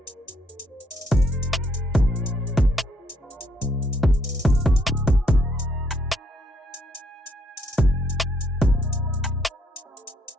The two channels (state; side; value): normal; both; correlation 0.71